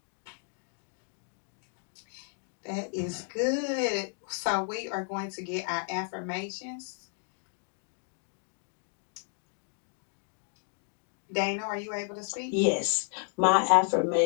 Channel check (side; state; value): right; silent; 56 dB below the other